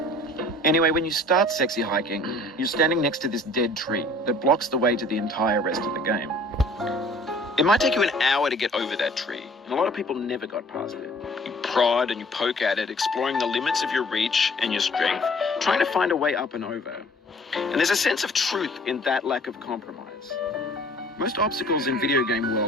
Anyway, when you start Sexy Hiking, you're standing next to this dead tree that blocks the way to the entire rest of the game. It might take you an hour to get over that tree, and a lot of people never got past it. You prod and you poke at it, exploring the limits of your reach and your strength, trying to find a way up and over. And there's a sense of truth in that lack of compromise. Most obstacles in video game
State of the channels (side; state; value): both; normal; correlation 0.52